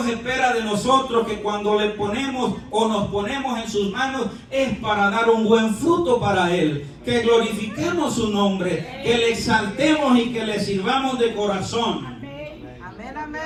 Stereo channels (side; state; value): both; identical; correlation 1.00